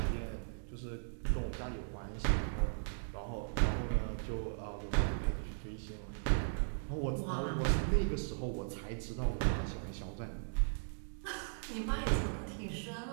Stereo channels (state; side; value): silent; left; digital silence